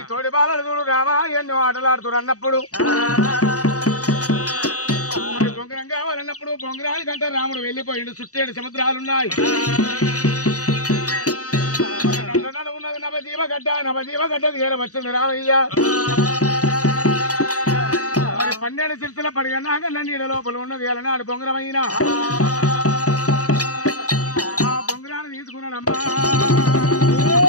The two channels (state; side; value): late; right; 0.66 ms